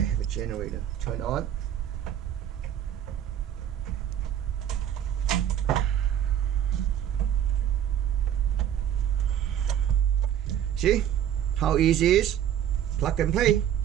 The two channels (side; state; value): left; quieter; 10.3 dB